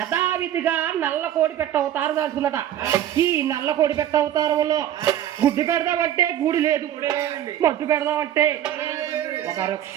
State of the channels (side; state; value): left; quieter; 11.4 dB